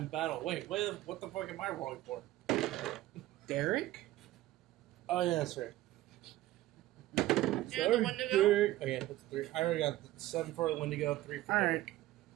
battle. Wait, what the fuck am I rolling for? Derek? Oh yeah, that's right. And the Wendigo. Derek. Okay, that's 3. I already got 7 for the Wendigo, 3 for Alright. Derek.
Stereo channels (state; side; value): quieter; left; 15.6 dB